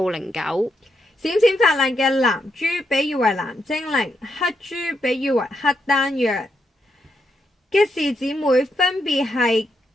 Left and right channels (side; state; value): both; normal; correlation 0.81